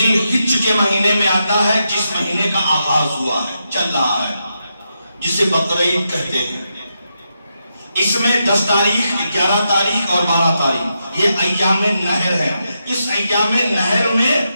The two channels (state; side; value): inverted; both; correlation -0.84